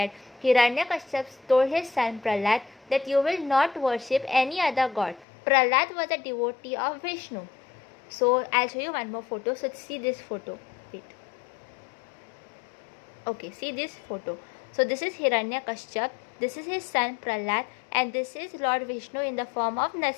Hiranyakashyap told his son Prahlad that you will not worship any other god. Prahlad was a devotee of Vishnu. So I'll show you one more photo. So see this photo. Wait. Okay, see this photo. So this is Hiranyakashyap. This is his son Prahlad, and this is Lord Vishnu in the form of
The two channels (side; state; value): right; drops out; at 5.2 s